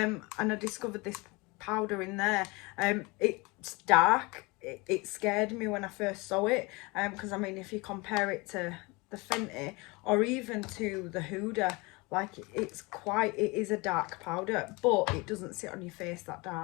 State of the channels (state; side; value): quieter; right; 25.8 dB